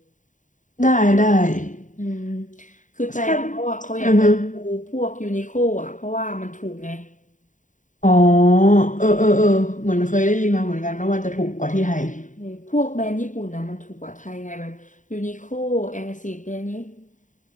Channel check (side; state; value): right; late; 0.37 ms